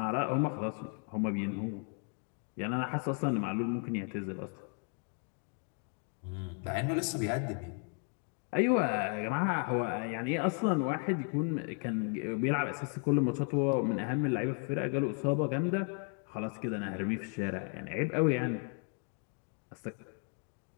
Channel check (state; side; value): quieter; right; 38.3 dB